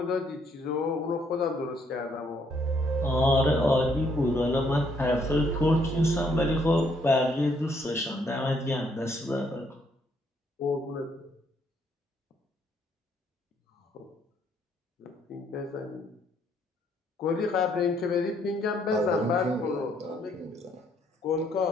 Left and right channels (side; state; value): both; normal; correlation 0.69